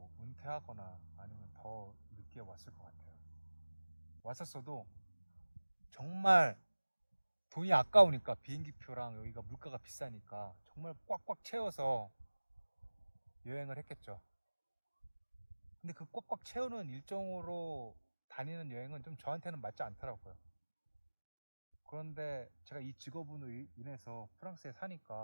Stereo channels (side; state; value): both; inverted; correlation -1.00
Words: 은퇴하거나 아니면 더 늦게 왔을 것 같아요. 왔었어도 정말 돈이 아까우니까, 비행기표랑 여기가 물가가 비싸니까 정말 꽉꽉 채워서 여행을 했겠죠. 근데 그 꽉꽉 채우는 일정으로 다니는 여행은 좀 저한테는 맞지 않더라고요. 그런데 제가 이 직업으로 인해서 프랑스에